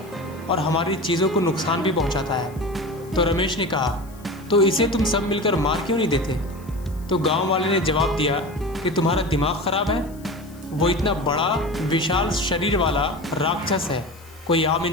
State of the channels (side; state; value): left; noise; hiss, 25 dB below the sound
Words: और हमारी चीज़ों को नुकसान भी पहुंचाता है। तो रमेश ने कहा, तो इसे तुम सब मिलकर मार क्यों नहीं देते? तो गांव वाले ने जवाब दिया कि तुम्हारा दिमाग खराब है। वो इतना बड़ा विशाल शरीर वाला राक्षस है, कोई आम